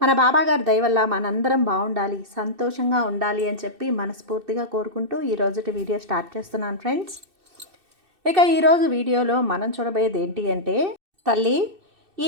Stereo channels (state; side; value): late; left; 2.6 ms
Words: బాబాగారి దయ వల్ల మనందరం బాగుండాలి, సంతోషంగా ఉండాలి అని చెప్పి మనస్ఫూర్తిగా కోరుకుంటూ ఈరోజుటి వీడియో స్టార్ట్ చేస్తున్నాను ఫ్రెండ్స్. ఇక ఈరోజు వీడియోలో మనం చూడబోయేది ఏంటి అంటే, తల్లి